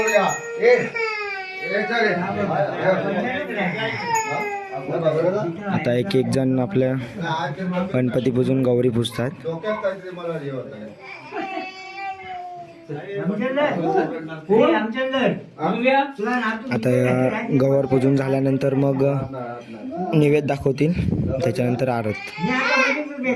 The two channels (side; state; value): both; identical; correlation 1.00